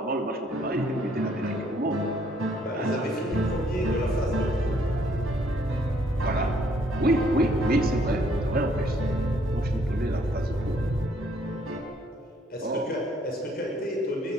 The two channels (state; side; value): normal; both; correlation 0.65